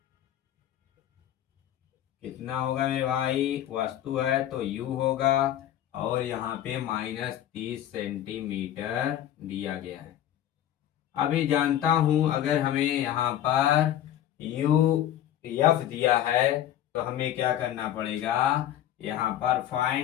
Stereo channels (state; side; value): quieter; right; 11.7 dB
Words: कितना होगा मेरे भाई, वस्तु है तो u होगा, और यहाँ पे -30 सेंटीमीटर दिया गया है। अभी जानता हूं अगर हमें यहाँ पर u f दिया है तो हमें क्या करना पड़ेगा, यहाँ पर